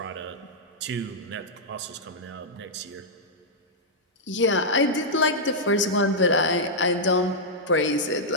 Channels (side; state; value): both; normal; correlation -0.07